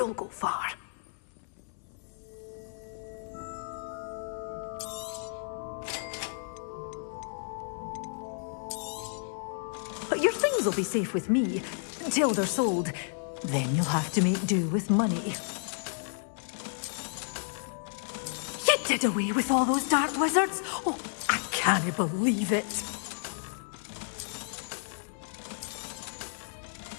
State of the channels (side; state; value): right; silent; 57 dB below the other